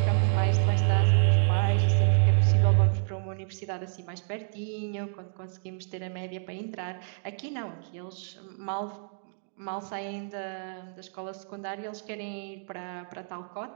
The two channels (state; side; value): silent; left; digital silence